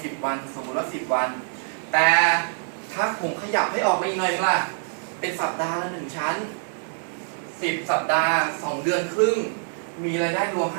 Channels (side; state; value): left; silent; 62 dB below the other